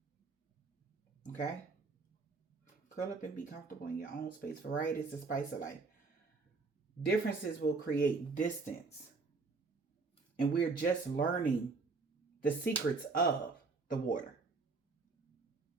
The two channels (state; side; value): quieter; left; 4.1 dB